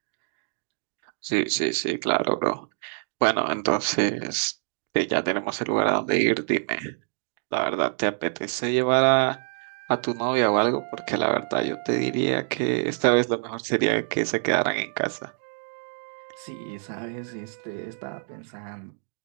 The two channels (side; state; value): left; silent; digital silence